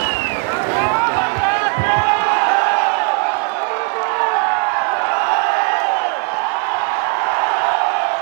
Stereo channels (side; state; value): left; quieter; 35.2 dB